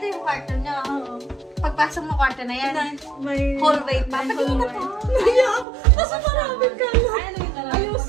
yung kwarto niya. Pagpasok mo kwarto na yan. Hallway pa. Pati mo na pa. Naya ako. Nasa maraming ka lang. Ayos.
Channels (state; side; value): drops out; left; at 5.7 s